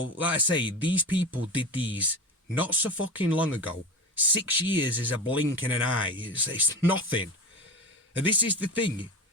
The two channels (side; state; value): both; normal; correlation 0.27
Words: I say, these people did these not so fucking long ago. 6 years is a blink in an eye. It's nothing. And this is the thing.